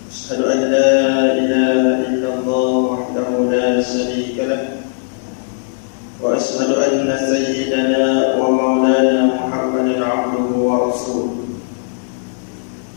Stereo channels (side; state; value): right; silent; digital silence